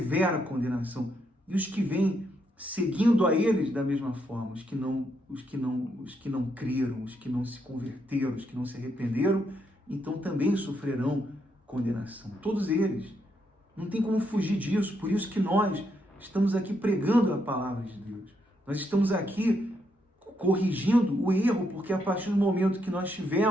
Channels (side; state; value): both; normal; correlation 0.78